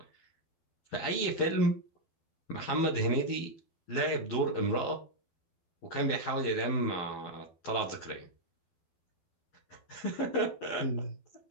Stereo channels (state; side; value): late; right; 12 ms